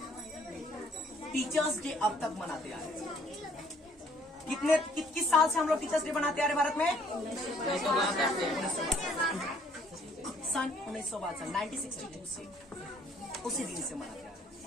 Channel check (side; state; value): both; normal; correlation 0.62